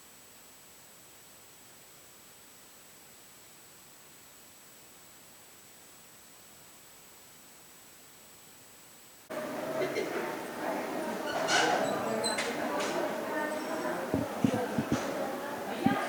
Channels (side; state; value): both; identical; correlation 1.00